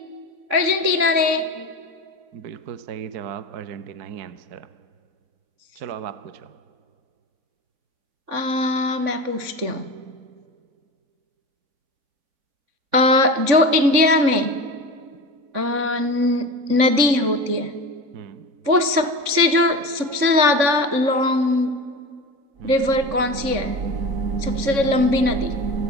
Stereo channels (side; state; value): left; late; 3.6 ms